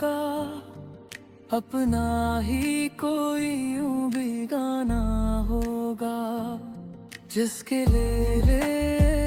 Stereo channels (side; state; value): both; identical; correlation 1.00